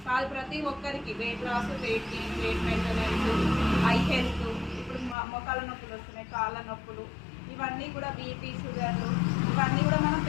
కాదు. ప్రతి ఒక్కరికి weight loss, weight gain, weight maintenance, eye health, ఇప్పుడు మొక్కల నొప్పులు వస్తున్నాయి, కాళ్ళ నొప్పులు, ఇవన్నీ కూడా బీపీ, షుగర్లు, ఇవన్నీ కూడా మనం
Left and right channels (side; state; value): right; drops out; at 5.2 s